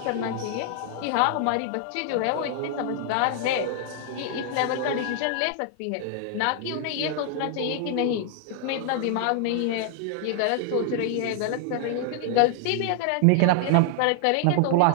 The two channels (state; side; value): different; both; correlation 0.00